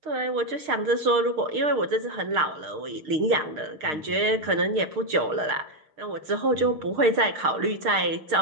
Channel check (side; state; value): left; late; 6.5 ms